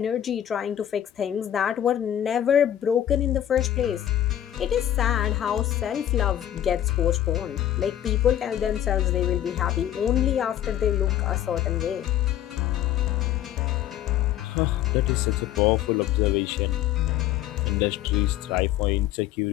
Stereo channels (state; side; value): quieter; right; 11.6 dB